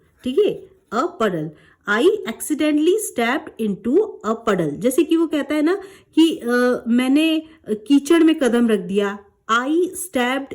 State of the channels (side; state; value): both; identical; correlation 1.00